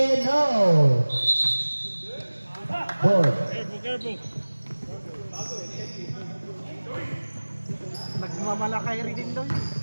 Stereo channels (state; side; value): inverted; both; correlation -1.00